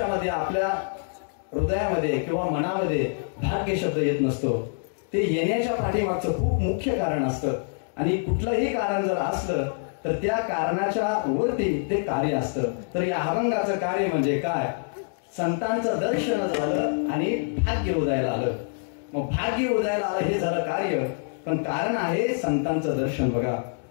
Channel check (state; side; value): silent; right; digital silence